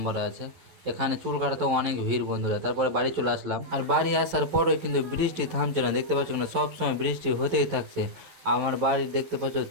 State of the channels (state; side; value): late; left; 11 ms